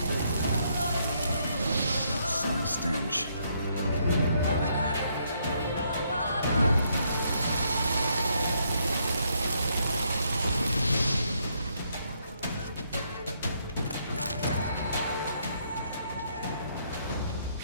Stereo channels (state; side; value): inverted; both; correlation -0.73